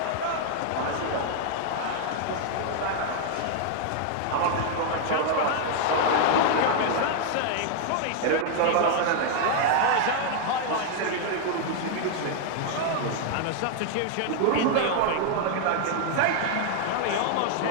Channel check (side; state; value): both; different; correlation 0.00